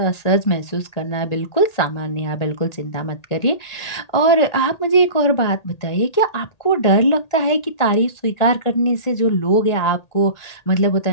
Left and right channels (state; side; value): late; right; 1.8 ms